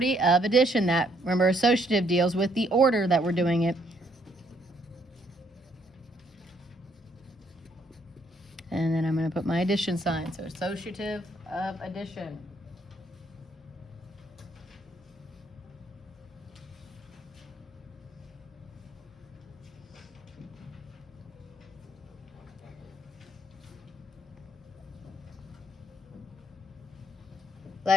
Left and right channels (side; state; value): both; normal; correlation 0.69